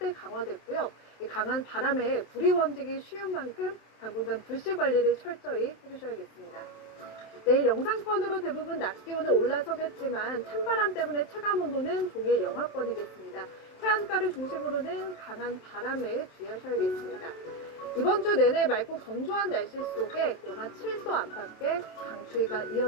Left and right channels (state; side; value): late; right; 27 ms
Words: 강화됐고요. 이 강한 바람에 불이 번지기 쉬운 만큼 당분간 불씨 관리를 철저히 해주셔야겠습니다. 내일 영상권으로 대부분 낮 기온은 올라서겠지만 찬바람 때문에 체감온도는 종일 영하권이겠습니다. 해안가를 중심으로는 강한 바람에 주의하셔야겠습니다. 이번 주 내내 맑고 건조한 날씨 속에 영하 7도 안팎의 강추위가